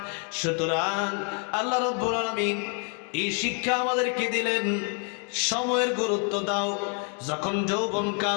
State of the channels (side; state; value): right; quieter; 39.4 dB